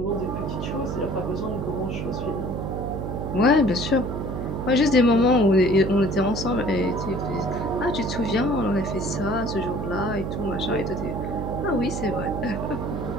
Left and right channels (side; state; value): right; noise; hum, 4 dB below the sound